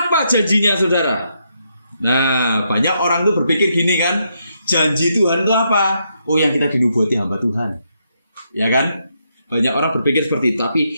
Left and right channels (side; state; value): both; inverted; correlation -0.79